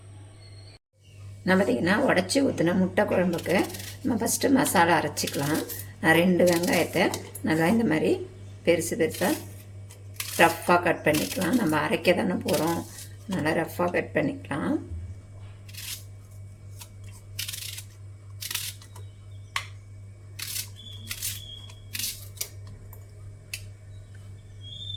நான் பார்த்திங்கன்னா உடச்சி ஊற்றின முட்டை குழம்புக்கு நம்ம ஃபஸ்ட்டு மசாலா அரைச்சிக்கலாம். நான் 2 வெங்காயத்தை நல்லா இந்த மாதிரி பெருசு பெருசாக ரஃப்பாக கட் பண்ணிக்கலாம். நம்ம அரைக்க தானே போகிறோம், நல்லா ரஃப்பாக கட் பண்ணிக்கலாம்.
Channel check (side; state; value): both; identical; correlation 1.00